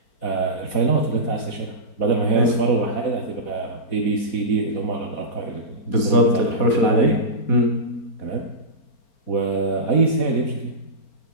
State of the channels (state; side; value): late; right; 4.2 ms